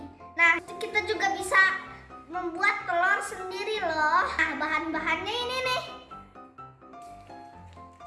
Nah, kita juga bisa membuat telur sendiri loh. Nah, bahan-bahannya ini nih.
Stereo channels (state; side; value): identical; both; correlation 1.00